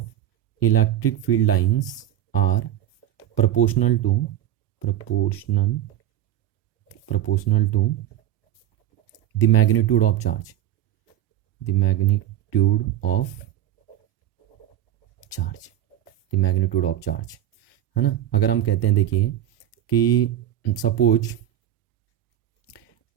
electric field lines are proportional to the magnitude of charge, the magnitude of charge, है ना। अगर हम कहते हैं देखिए कि सपोज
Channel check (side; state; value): left; quieter; 11.7 dB